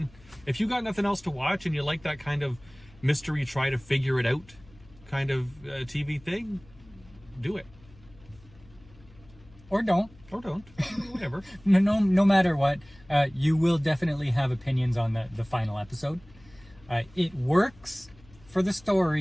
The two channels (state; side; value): noise; left; hum, 25 dB below the sound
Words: if you got nothing else to watch and you like that kind of mystery, try to figure it out kind of TV thing, do it. Or don't. Or don't. Whatever. No matter what, you will definitely have opinions on the final episode. It works for the